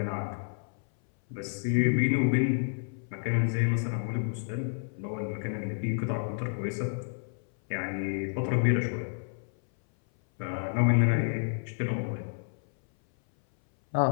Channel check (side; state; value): right; silent; 58 dB below the other